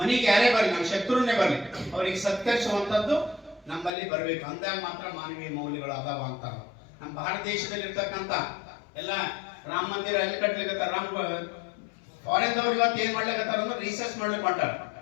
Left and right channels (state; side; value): drops out; right; at 3.9 s